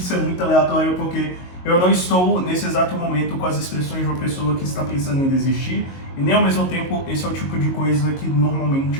é muito aleatório porque eu não estou nesse exato momento com as expressões de uma pessoa que está pensando em desistir e nem ao mesmo tempo esse é o tipo de coisa que normalmente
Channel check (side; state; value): right; late; 22 ms